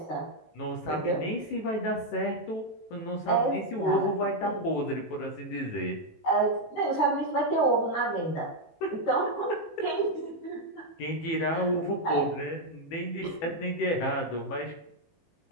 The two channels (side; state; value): right; late; 18 ms